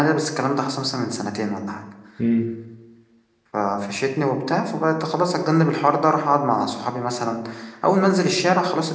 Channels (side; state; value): both; identical; correlation 1.00